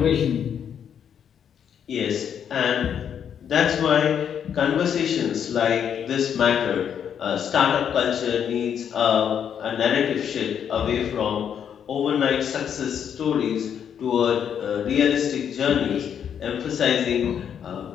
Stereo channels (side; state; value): right; quieter; 8.4 dB